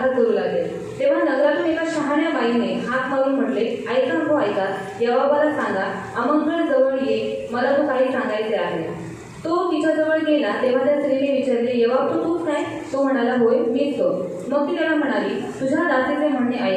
करू लागले। तेव्हा नगरातून एका शहाण्या बाईने हाक मारून म्हटले, ऐका हो ऐका, योआबाला सांगा, आमंत्रण जवळ ये, मला तो काही सांगायचे आहे। तो तिच्याजवळ गेला तेव्हा त्या स्त्रीने विचारले, योआब तूच काय? तो म्हणाला, होय मीच तो। मग ती त्याला म्हणाली, तुझ्या दासीचे म्हणणे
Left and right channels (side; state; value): both; identical; correlation 1.00